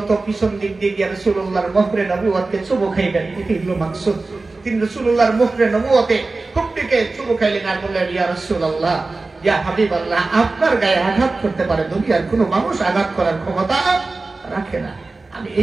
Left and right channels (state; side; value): quieter; left; 3.5 dB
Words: পিছন দিক দিয়ে গিয়ে রাসূলুল্লাহর মুখরে নবুয়তকে চুমু খাইবেন। এটি হলো মাকসুদ। তিনি রাসূলুল্লাহর মুখরে নবুয়তে খুব দিকে চুমু খাইলেন আর বললেন, ইয়া রাসূলুল্লাহ, ইয়া হাবিবাল্লাহ, আপনার গায়ে আঘাত করতে পারে, দুনিয়ার কোনো মানুষ আঘাত করার ক্ষমতা রাখে না। আমি